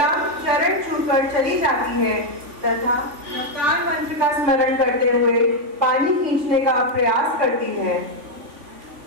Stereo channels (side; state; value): left; late; 3.5 ms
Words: चरण छूकर चली जाती है तथा नवकार मंत्र का स्मरण करते हुए पानी खींचने का प्रयास करती है।